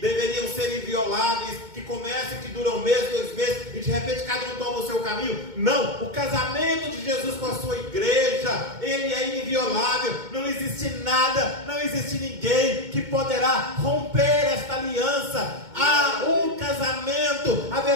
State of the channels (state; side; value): late; left; 2.2 ms